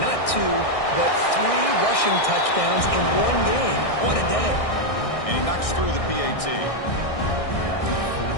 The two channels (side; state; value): right; late; 1.6 ms